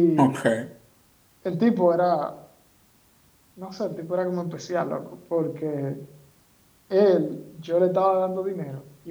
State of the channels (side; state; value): both; identical; correlation 1.00